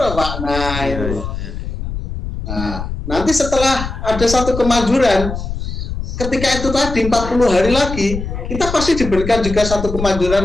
Pak. Nah, itu. Nah, nanti setelah ada satu kemajuran, ketika itu tadi 40 hari lagi, kita pasti diberikan juga satu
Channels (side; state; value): left; noise; rumble, 6 dB below the sound